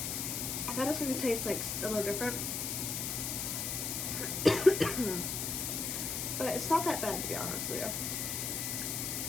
I thought it was going to taste like a little different, but it's not that bad to be honest with you.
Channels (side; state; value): left; noise; hiss, 2 dB below the sound